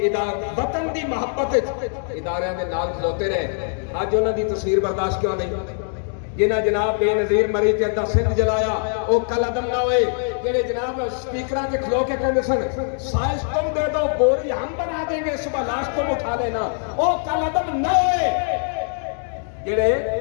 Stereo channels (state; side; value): silent; right; 64 dB below the other